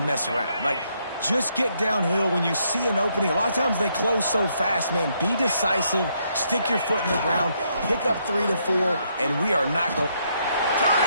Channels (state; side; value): inverted; both; correlation -0.74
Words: mess around. Like, just get downhill when you see an opening. A lot of times they close so fast, man. Be decisive, stick your foot in the ground, pick up 3 to 4, and we are not going.